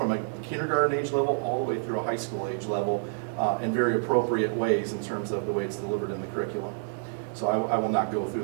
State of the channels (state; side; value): silent; left; digital silence